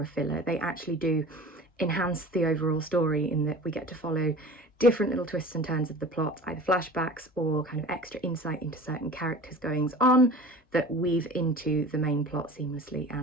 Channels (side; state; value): both; normal; correlation 0.40